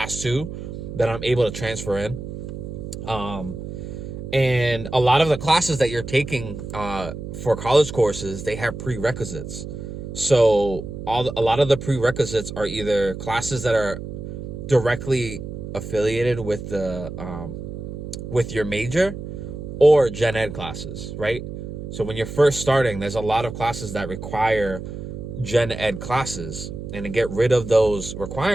2 that I'm able to transfer in. And a lot of the classes that you're taking for college courses, they have prerequisites. So a lot of the prerequisites are either classes that are directly affiliated with the with your major, or gen ed classes, right? So when you're first starting, there's a lot of classes that require gen ed classes, and to get rid of those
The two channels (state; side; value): noise; right; hum, 8 dB below the sound